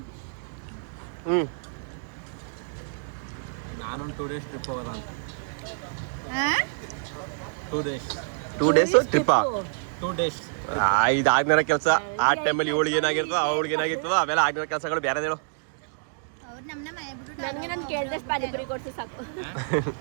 ನಾನೊಂದು 2 days ಟ್ರಿಪ್ ಹೋಗೋದ ಅಂತ. ಆ? 2 days 2 days ಟ್ರಿಪ್ಪಾ? 2 days ಇದು ಆಗ್ನೇರ ಕೆಲಸ. ಆ ಟೈಮಲ್ಲಿ ಇವಳಿಗೆ ಏನಾಗಿರ್ತದೋ ಅವಳಿಗೆ ಏನಾಗಿರ್ತದೋ ಅವೆಲ್ಲ ಆಗ್ನೇರ ಕೆಲಸಗಳು ಬೇರೆ ಹೇಳು. ಅವ್ರು ನಮ್ಮನ್ನ ಮನೆ ಬಿಟ್ಟು ನನಗೆ ನಾನು ಕೇಳಿದಷ್ಟು ಪಾನಿಪುರಿ ಕೊಡ್ಸಿ ಸಾಕು. ನಾನು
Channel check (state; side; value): silent; left; digital silence